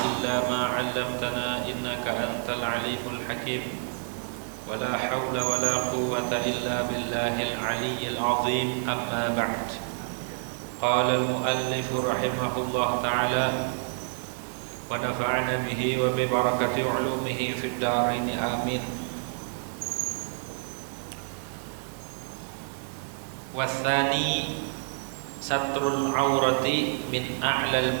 illa ma 'allamtana innaka antal alimul hakim. Wa la hawla wa la quwwata illa billahil 'aliyyil 'azim. Amma ba'd. Qala al-muallif rahimahullah ta'ala wa nafa'ana bihi wa bi barakati 'ulumihi fid dharain amin. Wathani satrul aurati min a'lal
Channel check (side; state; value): left; silent; digital silence